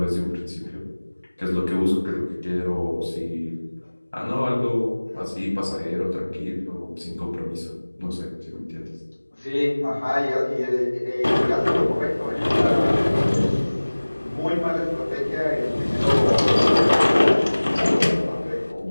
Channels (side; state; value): both; inverted; correlation -1.00